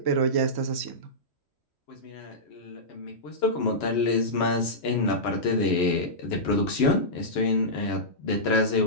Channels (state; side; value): late; right; 3.1 ms